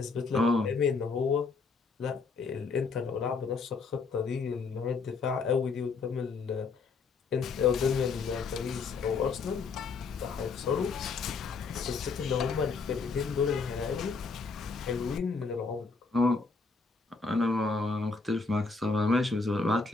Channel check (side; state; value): right; quieter; 4.5 dB